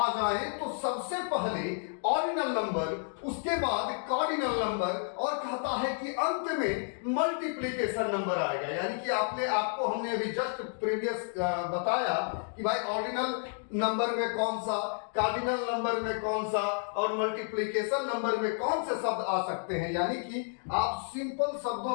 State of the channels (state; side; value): silent; right; 55 dB below the other